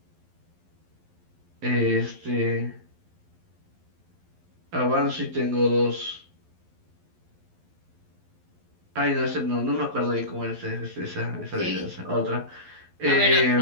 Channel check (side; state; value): left; late; 11 ms